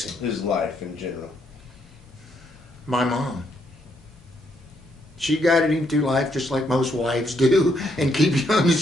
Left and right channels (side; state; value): both; normal; correlation 0.74